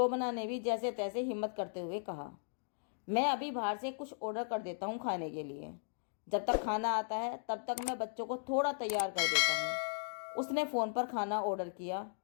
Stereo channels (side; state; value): right; silent; digital silence